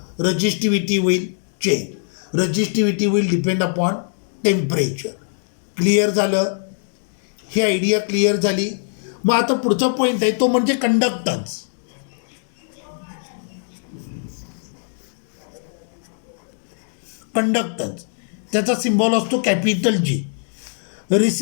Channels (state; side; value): silent; right; digital silence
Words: रजिस्टिव्हिटी will change. Resistivity will depend upon temperature. Clear झालं. ही आयडिया क्लिअर झाली. मग आता पुढचा पॉईंट आहे तो म्हणजे कंडक्टन्स. कंडक्टन्स त्याचा सिम्बॉल असतो capital G.